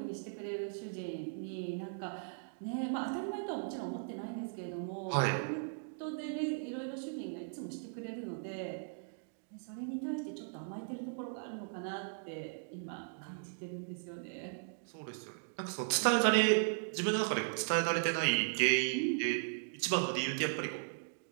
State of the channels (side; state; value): left; silent; digital silence